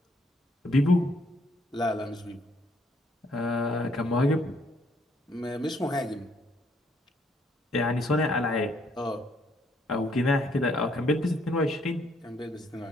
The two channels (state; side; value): normal; both; correlation 0.69